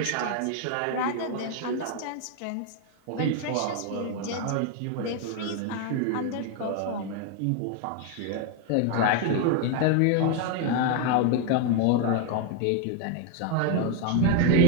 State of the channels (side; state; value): both; different; correlation 0.01